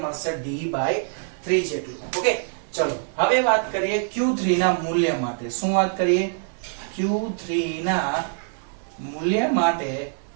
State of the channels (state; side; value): silent; left; digital silence